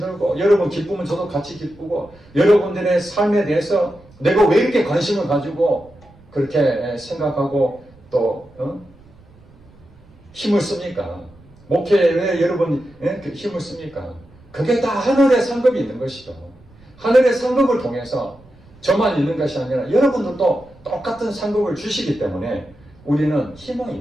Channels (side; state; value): right; noise; rumble, 26 dB below the sound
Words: 여러분 기쁘면 저도 같이 기쁘고 여러분들의 삶에 대해서 내가 왜 이렇게 관심을 가지고 그렇게 생각하고 또 힘을 씁니까? 목회에 왜 여러분이 힘을 씁니까? 그게 다 하늘의 상급이 있는 것이죠. 하늘의 상급을 통해서 저만 있는 것이 아니라 여러분들도 똑같은 상급을 주시기 때문에 우리는 희망이